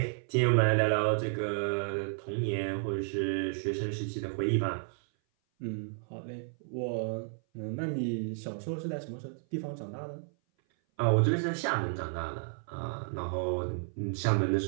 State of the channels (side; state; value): left; silent; 56 dB below the other